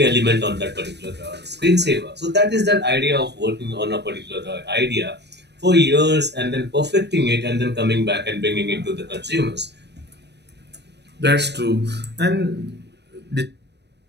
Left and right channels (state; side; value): late; left; 0.50 ms